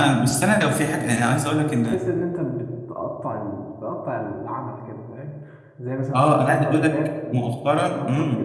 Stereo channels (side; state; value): both; identical; correlation 1.00